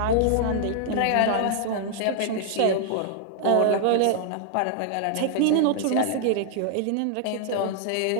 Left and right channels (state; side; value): different; both; correlation 0.00